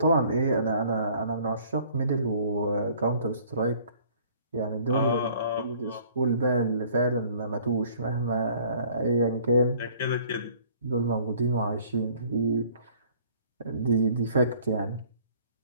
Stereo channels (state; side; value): inverted; both; correlation -0.56